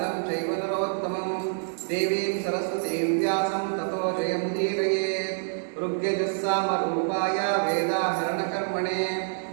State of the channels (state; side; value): silent; left; digital silence